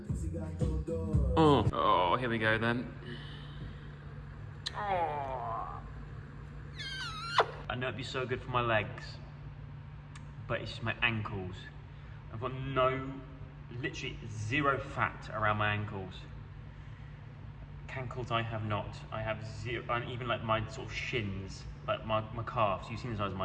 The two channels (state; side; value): identical; both; correlation 1.00